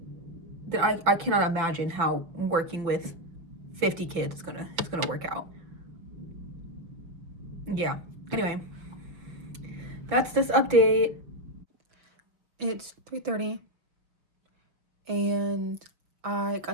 then I cannot imagine how working with 50 kids is gonna work out. Yeah. Anyway, that's this update. It's 3:30, and I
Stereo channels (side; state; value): left; late; 6.3 ms